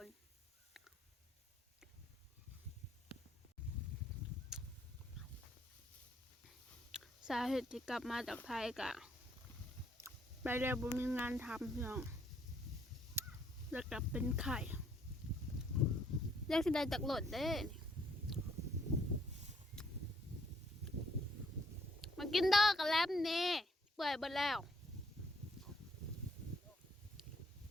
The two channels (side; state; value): both; normal; correlation 0.67